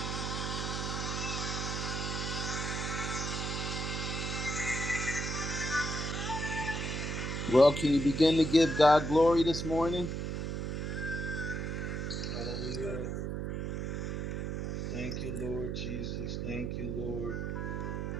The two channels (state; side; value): noise; right; hum, 2 dB below the sound